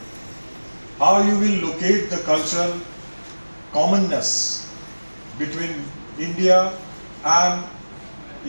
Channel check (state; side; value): inverted; both; correlation -1.00